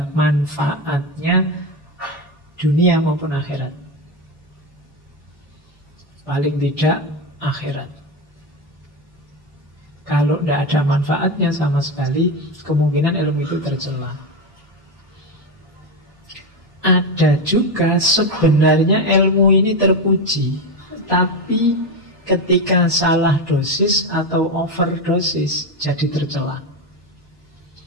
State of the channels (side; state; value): both; normal; correlation 0.15